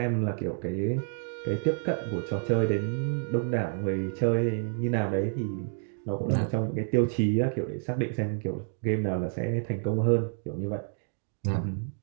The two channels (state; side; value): silent; left; digital silence